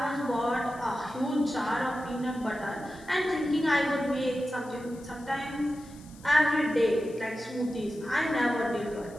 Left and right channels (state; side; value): noise; left; hiss, 24 dB below the sound